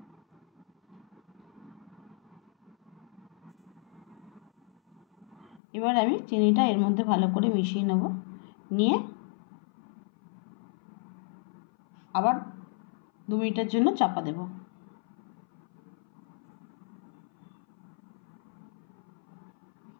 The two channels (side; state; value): right; drops out; at 5.6 s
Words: এবার আমি চিনিটা এর মধ্যে ভালো করে মিশিয়ে নেব, নিয়ে আবার 2 মিনিটের জন্য চাপা দেব।